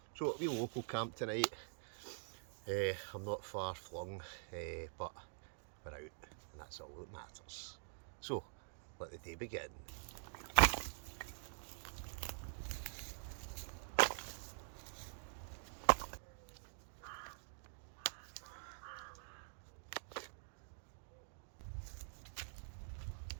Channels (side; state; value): left; silent; digital silence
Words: So it'll be a local camp tonight. I'm not far flung, but we're out, and that's all that matters. So let the day begin.